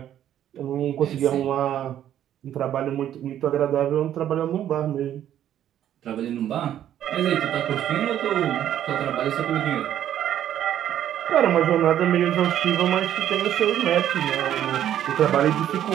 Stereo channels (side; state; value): left; quieter; 11.0 dB